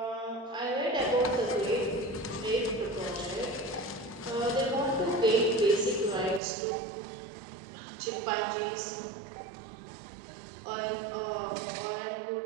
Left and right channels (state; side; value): drops out; left; at 6.4 s